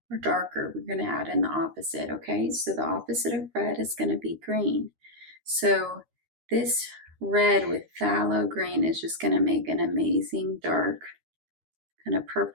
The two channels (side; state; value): left; late; 13 ms